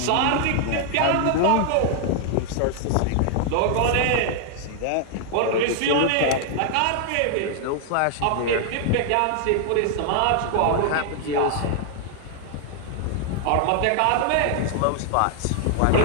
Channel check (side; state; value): both; different; correlation 0.00